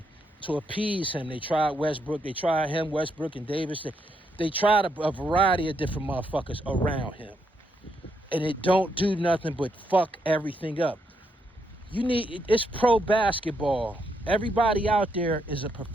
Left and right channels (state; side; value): normal; both; correlation 0.78